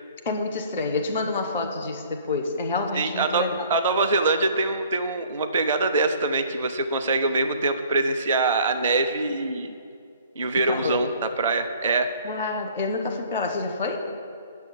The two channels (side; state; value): both; inverted; correlation -0.53